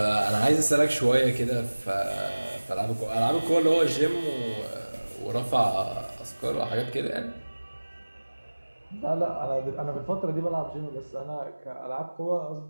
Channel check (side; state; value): both; inverted; correlation -1.00